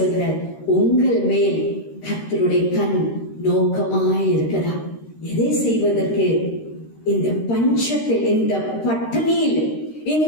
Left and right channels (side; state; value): right; late; 13 ms